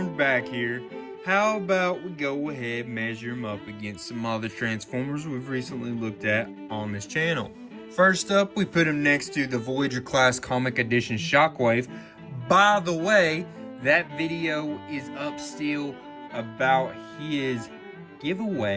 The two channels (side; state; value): both; identical; correlation 1.00